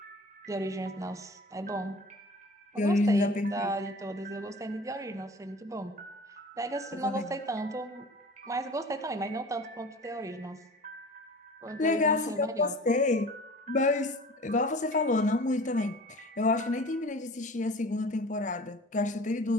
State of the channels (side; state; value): both; normal; correlation 0.42